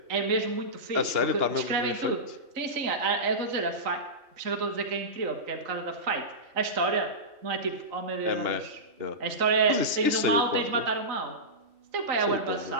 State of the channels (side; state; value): left; late; 2.9 ms